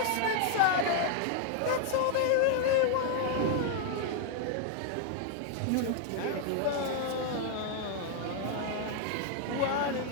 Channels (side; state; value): both; different; correlation 0.00